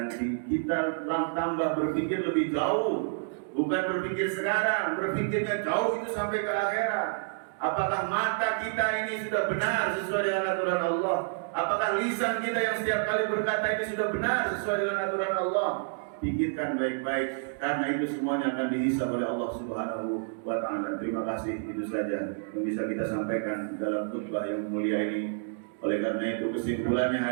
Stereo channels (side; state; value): left; silent; digital silence